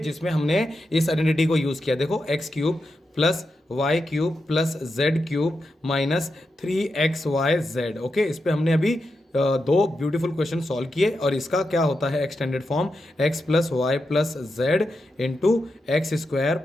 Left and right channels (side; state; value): both; normal; correlation 0.87